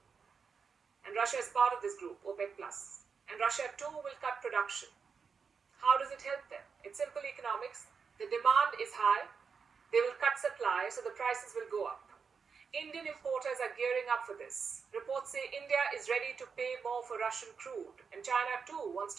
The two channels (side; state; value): left; quieter; 5.8 dB